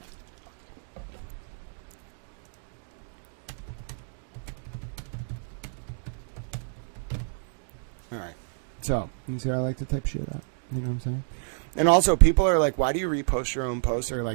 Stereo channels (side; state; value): left; silent; digital silence